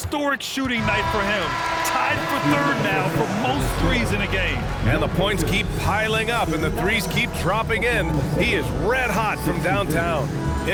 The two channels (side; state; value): both; identical; correlation 1.00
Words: shooting night for him. Tied for third now for most threes in a game. And the points keep piling up and the threes keep dropping in. He is red hot from downtown.